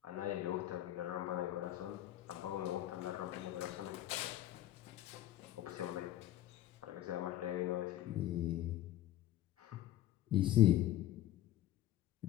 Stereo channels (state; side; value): quieter; right; 13.5 dB